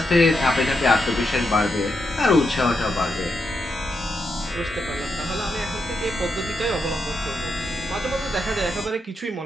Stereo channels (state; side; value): normal; both; correlation 0.83